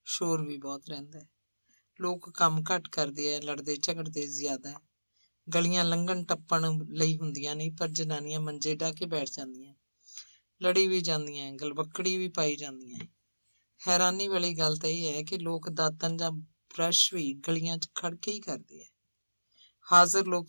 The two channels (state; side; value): inverted; both; correlation -1.00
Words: ਸ਼ੋਰ ਵੀ ਬਹੁਤ ਰਹਿੰਦਾ ਹੈ। ਲੋਕ ਕੰਮ ਘੱਟ ਕਰਦੇ ਆ, ਲੜਦੇ ਝਗੜਦੇ ਜ਼ਿਆਦਾ ਹੈ। ਗਲੀਆਂ ਲੰਘਣ ਟੱਪਣ ਲਈ ਹੁੰਦੀਆਂ ਨਹੀਂ, ਪਰ ਜਨਾਨੀਆਂ ਮੰਜੇ ਢਾਹ ਕੇ ਬੈਠ ਜਾਂਦੀਆਂ, ਲੜੀ ਵੀ ਜਾਂਦੀਆਂ, ਗਲਵੱਕੜੀ ਵੀ ਪਾਈ ਜਾਂਦੀਆਂ। ਹੈਰਾਨੀ ਵਾਲੀ ਗੱਲ ਤਾਂ ਇਹ ਹੈ ਕਿ ਲੋਕ ਦਾਤਨ ਜਾਂ ਬ੍ਰਸ਼ ਵੀ ਗਲੀਆਂ 'ਚ ਖੜ ਕੇ ਹੀ ਕਰਦੇ ਆ। ਹਾਜ਼ਰ